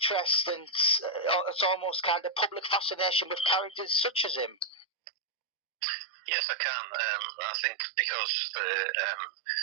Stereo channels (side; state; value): left; drops out; at 4.9 s